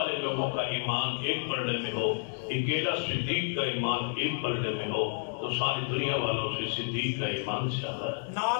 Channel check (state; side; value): silent; right; 58 dB below the other